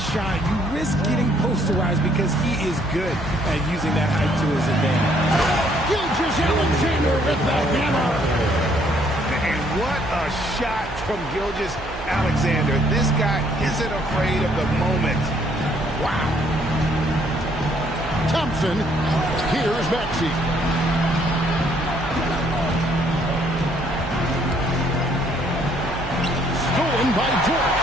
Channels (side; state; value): right; noise; hum, 13 dB below the sound